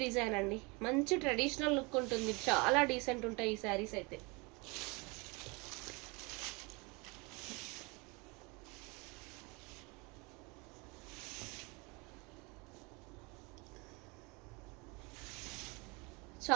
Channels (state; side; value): quieter; left; 28.0 dB